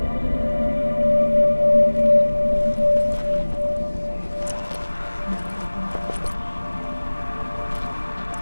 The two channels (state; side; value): inverted; both; correlation -1.00